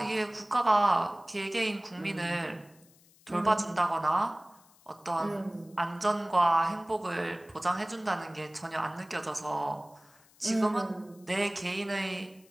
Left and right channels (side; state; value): left; noise; hiss, 29 dB below the sound